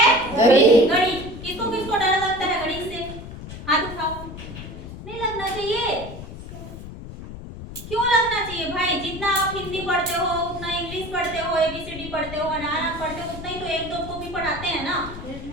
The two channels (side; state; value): left; noise; rumble, 12 dB below the sound